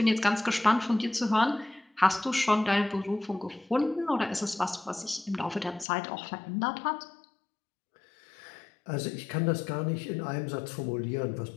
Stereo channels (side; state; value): right; drops out; at 5.9 s